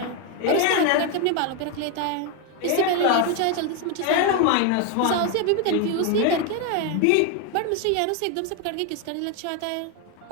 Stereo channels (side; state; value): both; different; correlation 0.01